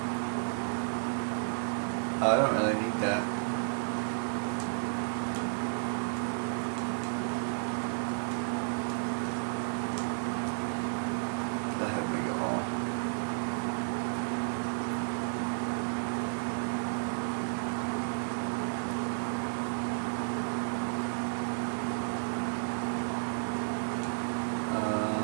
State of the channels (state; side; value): silent; left; 56 dB below the other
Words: I don't really need that. That had make it all.